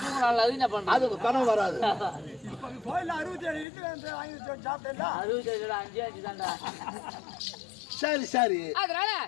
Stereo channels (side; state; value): right; drops out; at 3.7 s